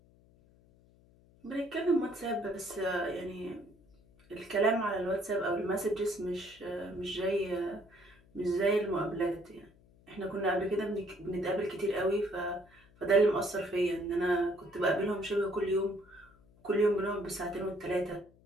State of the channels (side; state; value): left; noise; hum, 28 dB below the sound